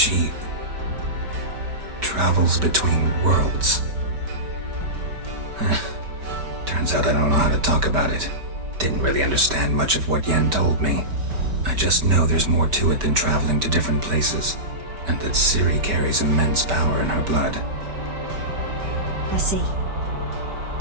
travels between worlds. Turns out I don't know how to talk about it. Didn't really understand much of what Yen told me. I just know there's more to it than traveling to different places, and that Ciri carries immense power in her blood. I see.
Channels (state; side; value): late; left; 5.4 ms